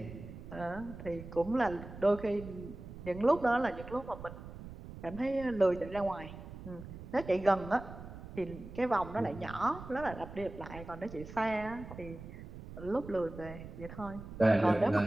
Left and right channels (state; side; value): noise; right; rumble, 13 dB below the sound